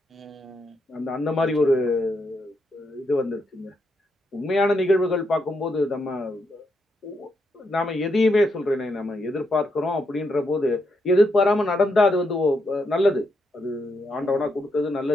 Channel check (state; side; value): normal; both; correlation 0.80